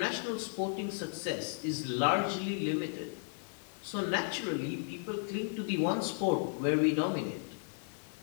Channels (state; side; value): silent; right; 55 dB below the other